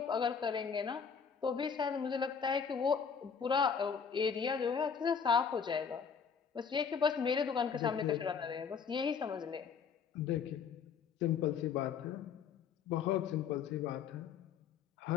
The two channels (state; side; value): quieter; right; 6.5 dB